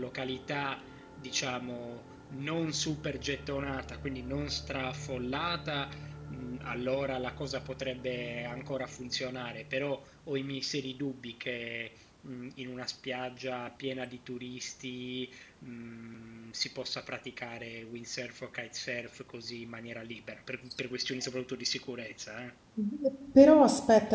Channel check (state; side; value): identical; both; correlation 1.00